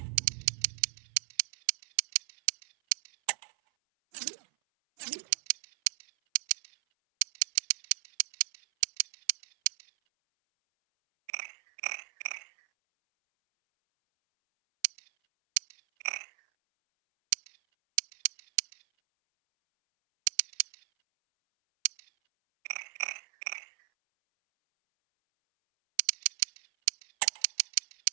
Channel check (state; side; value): silent; left; 55 dB below the other